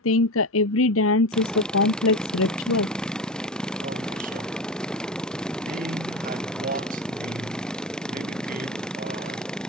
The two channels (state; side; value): normal; both; correlation 0.24